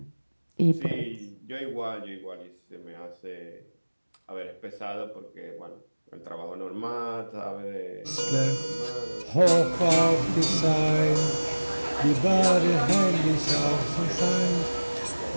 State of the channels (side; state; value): both; inverted; correlation -1.00